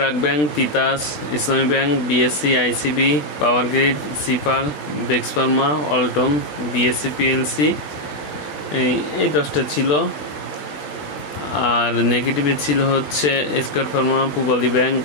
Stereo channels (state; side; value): late; right; 20 ms